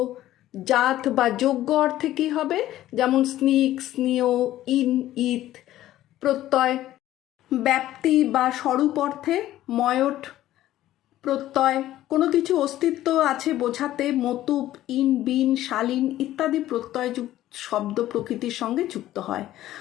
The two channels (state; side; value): quieter; right; 14.0 dB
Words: জাত বা যোগ্য অর্থে কি হবে? যেমন স্নিক, স্নেহ, ইন, ইত প্রত্যয়। ব্যাপ্তি বা স্বরূপ অর্থে ময়ট প্রত্যয়। কোনো কিছু অস্তিত্ব আছে বোঝাতে মতুপ, ইন, বিন, শালীন ইত্যাদি প্রত্যয় শব্দ প্রকৃতির সঙ্গে যুক্ত হয়।